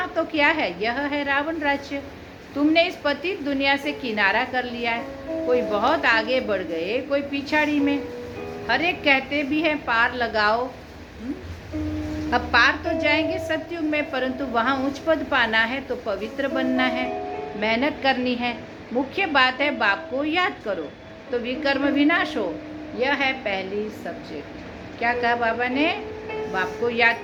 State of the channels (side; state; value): both; identical; correlation 1.00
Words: तो क्या है? यह है रावण राज्य। तुमने इस पतित दुनिया से किनारा कर लिया है। कोई बहुत आगे बढ़ गए, कोई पिछाड़ी में। हर एक कहते भी हैं पार लगाओ। अब पार तो जाएंगे सतयुग में, परंतु वहाँ उच्च पद पाना है तो पवित्र बनना है, मेहनत करनी है। मुख्य बात है बाप को याद करो तो विकर्म विनाश हो। यह है पहली सब्जेक्ट। क्या कहा बाबा ने? बाप को